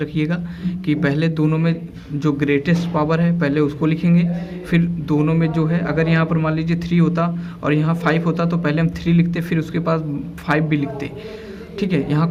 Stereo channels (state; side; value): identical; both; correlation 1.00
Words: कि पहले दोनों में जो ग्रेटेस्ट पावर है पहले उसको लिखेंगे, फिर दोनों में जो है, अगर यहाँ पर मान लीजिए 3 होता और यहाँ 5 होता तो पहले हम 3 लिखते, फिर उसके पास 5 भी लिखते। ठीक है, यहाँ